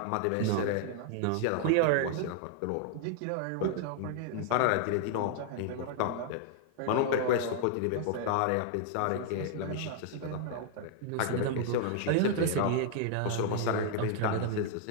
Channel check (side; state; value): both; different; correlation 0.00